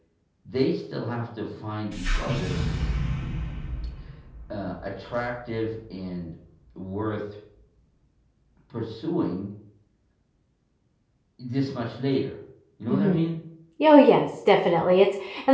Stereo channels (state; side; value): identical; both; correlation 1.00